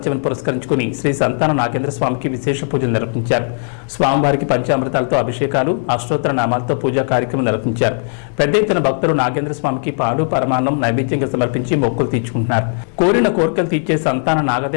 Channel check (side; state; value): right; silent; 59 dB below the other